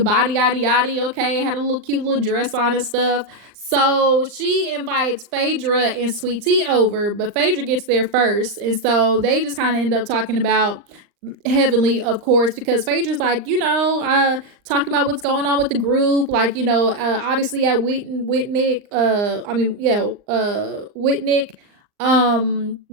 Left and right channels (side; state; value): left; late; 39 ms